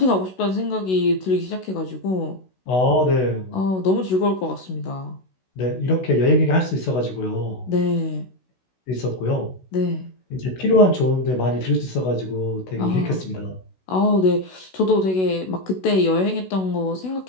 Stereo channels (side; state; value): right; late; 16 ms